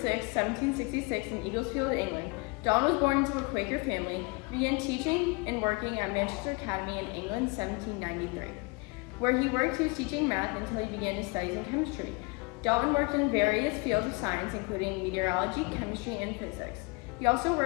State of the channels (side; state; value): right; quieter; 28.3 dB